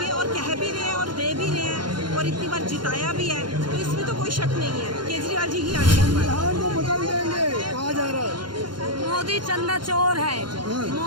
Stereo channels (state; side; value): late; left; 0.71 ms